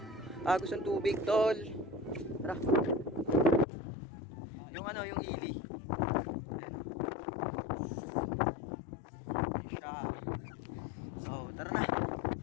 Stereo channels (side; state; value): right; drops out; at 3.7 s